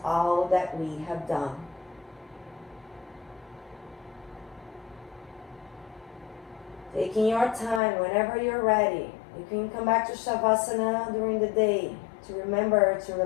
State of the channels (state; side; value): drops out; right; at 7.8 s